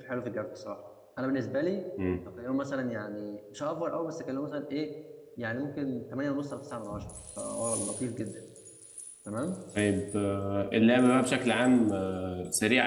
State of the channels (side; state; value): both; identical; correlation 1.00